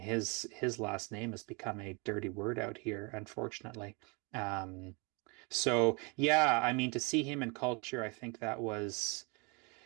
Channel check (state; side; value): quieter; left; 30.9 dB